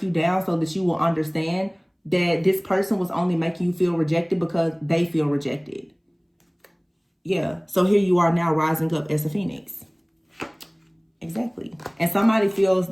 you down so that you will understand that this person was only making you feel rejected because they feel rejected. Yeah. So here you are now rising up as a phoenix. Exactly. And somebody feels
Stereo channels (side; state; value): both; identical; correlation 1.00